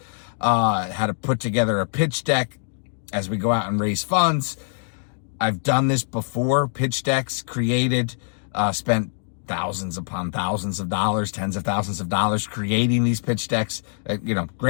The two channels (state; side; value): silent; right; digital silence